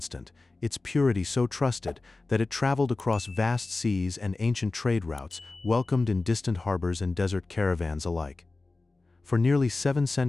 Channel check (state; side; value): quieter; right; 3.4 dB